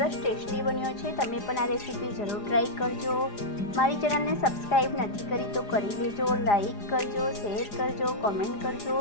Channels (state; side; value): late; right; 4.9 ms